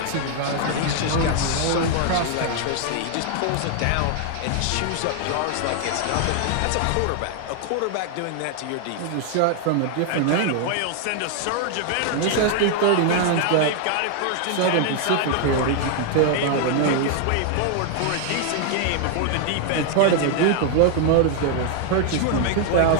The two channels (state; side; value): different; both; correlation 0.00